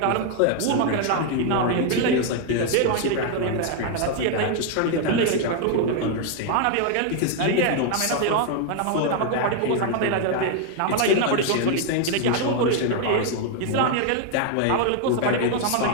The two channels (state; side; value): different; both; correlation 0.00